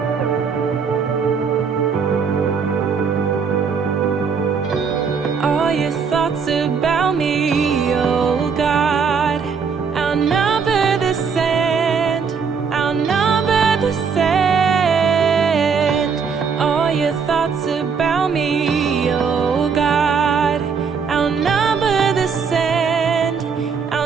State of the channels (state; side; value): quieter; left; 5.9 dB